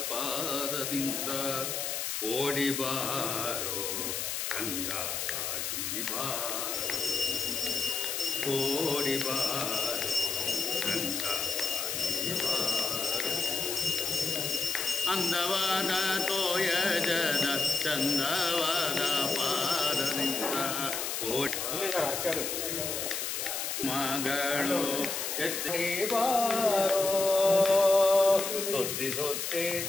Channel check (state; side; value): noise; left; hiss, 2 dB below the sound